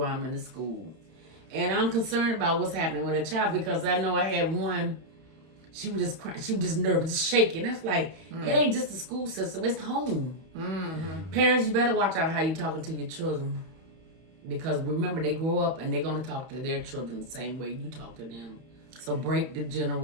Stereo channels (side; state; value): left; late; 31 ms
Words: I'm in the school. And I'm concerned about what's happening with a child because I know I had one. She was just crying. She was just nervous, just shaking. That's like, it ain't just the school system. It's home. Parents, you better watch out how you talking to your children. Because remember, they grow up and they're going to talk to their children the same way you talk to them. So break the